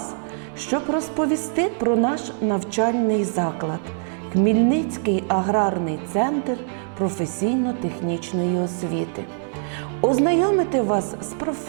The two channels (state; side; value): silent; left; 60 dB below the other